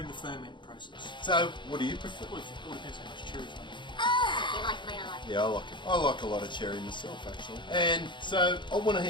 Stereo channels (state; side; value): late; right; 0.23 ms